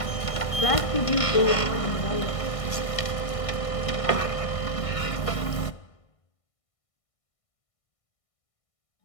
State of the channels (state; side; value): late; right; 1.6 ms